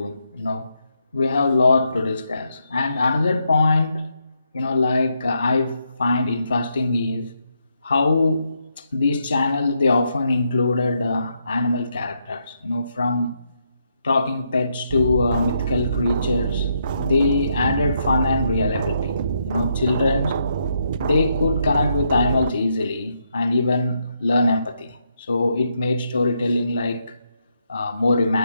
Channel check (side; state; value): both; inverted; correlation -0.79